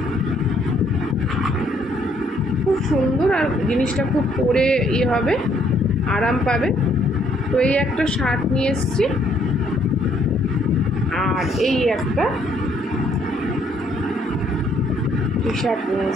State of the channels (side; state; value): both; normal; correlation 0.67